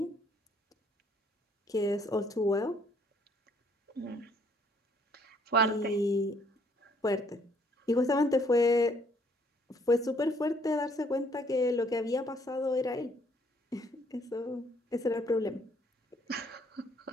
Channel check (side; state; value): both; normal; correlation 0.65